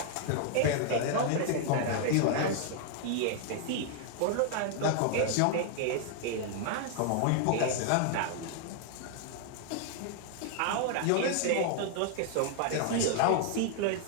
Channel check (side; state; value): both; different; correlation 0.00